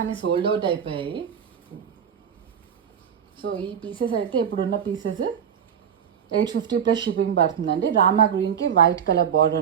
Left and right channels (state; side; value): quieter; left; 8.1 dB